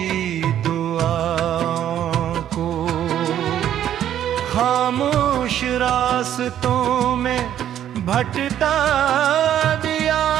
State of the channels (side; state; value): left; quieter; 10.8 dB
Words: दुआओं को खामोश रास्तों में भटका दिया।